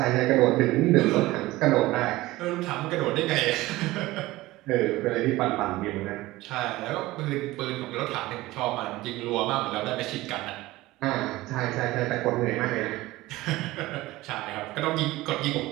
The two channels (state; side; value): quieter; left; 18.4 dB